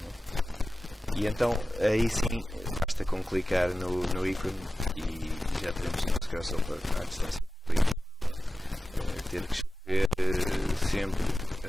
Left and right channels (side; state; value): both; normal; correlation 0.95